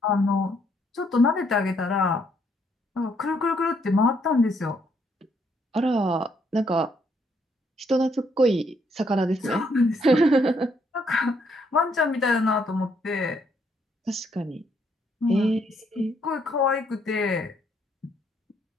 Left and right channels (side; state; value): both; normal; correlation 0.71